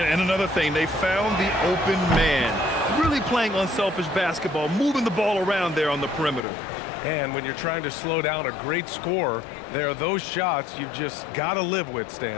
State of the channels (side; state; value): right; drops out; at 6.4 s